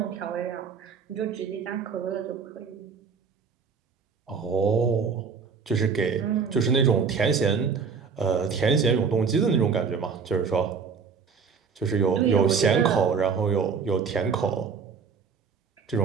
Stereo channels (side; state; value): left; quieter; 5.8 dB